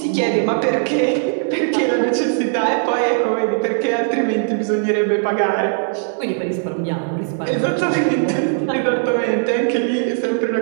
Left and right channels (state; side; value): silent; left; digital silence